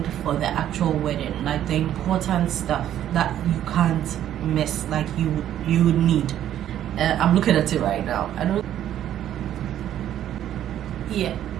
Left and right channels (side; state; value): left; quieter; 11.3 dB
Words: for the actual wedding, like the important stuff that you can't miss, like you would need. I'm looking at it right now.